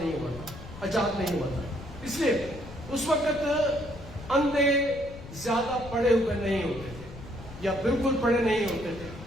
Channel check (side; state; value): left; noise; rumble, 14 dB below the sound